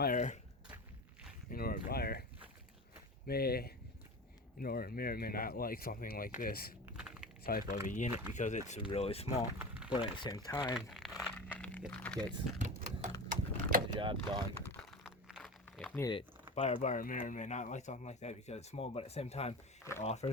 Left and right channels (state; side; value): normal; both; correlation 0.30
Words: may or may not like something like this type of a unit because it's really small, but at the same time it gets the job done if needed. Buyer may or may not like something like that because it's small, but at the same time it